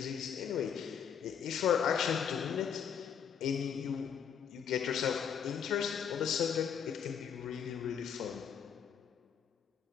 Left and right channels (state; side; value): quieter; right; 7.7 dB